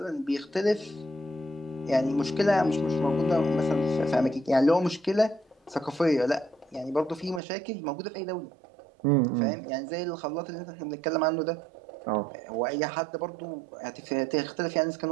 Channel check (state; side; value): drops out; left; at 7.4 s